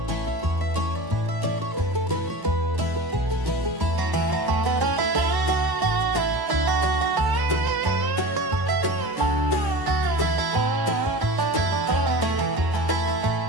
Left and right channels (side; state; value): left; late; 1.0 ms